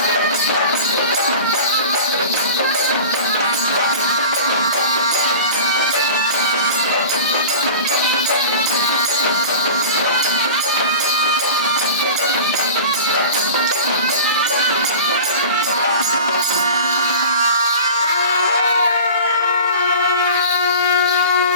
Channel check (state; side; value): inverted; both; correlation -0.37